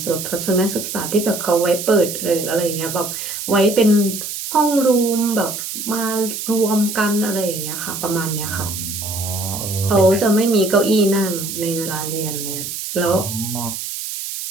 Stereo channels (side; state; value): right; noise; hiss, 6 dB below the sound